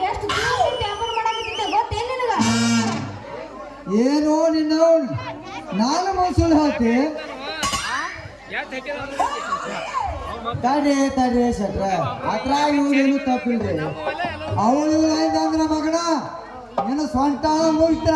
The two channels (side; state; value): both; identical; correlation 1.00